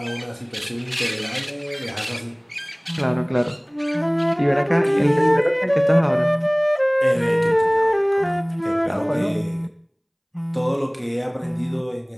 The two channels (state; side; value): identical; both; correlation 1.00